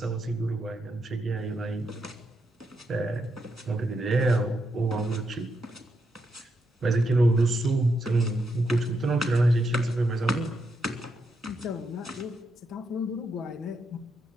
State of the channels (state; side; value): normal; both; correlation 0.81